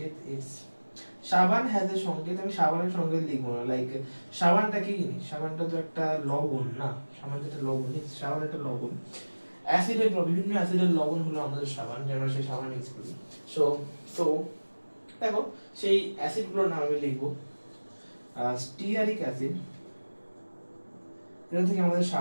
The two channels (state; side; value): inverted; both; correlation -1.00